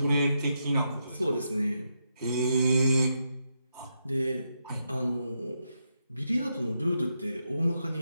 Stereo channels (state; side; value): inverted; both; correlation -0.83